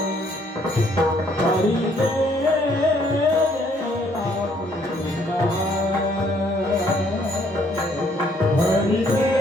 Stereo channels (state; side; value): normal; both; correlation 0.66